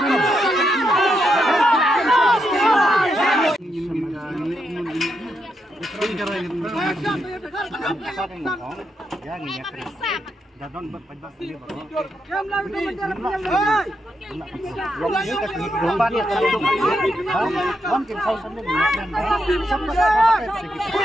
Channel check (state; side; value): normal; both; correlation 0.82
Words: Dadon berpajak ini baru.